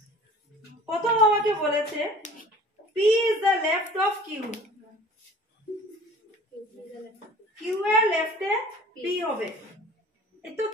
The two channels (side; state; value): both; normal; correlation 0.46